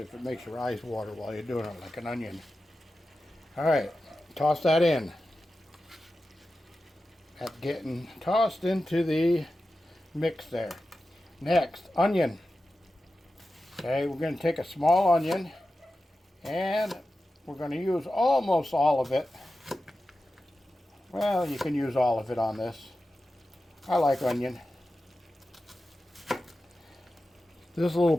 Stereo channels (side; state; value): both; normal; correlation 0.92